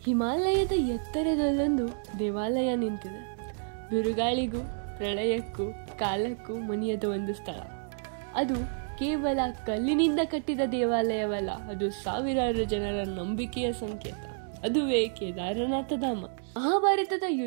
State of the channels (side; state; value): left; silent; digital silence